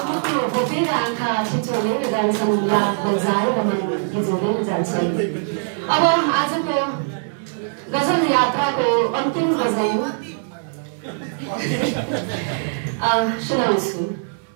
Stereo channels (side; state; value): left; silent; digital silence